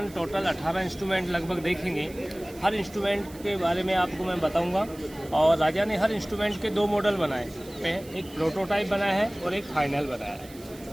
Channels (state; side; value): noise; right; hiss, 21 dB below the sound